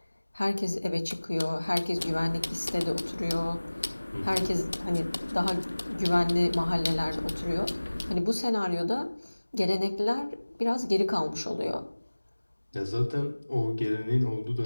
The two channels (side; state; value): both; inverted; correlation -1.00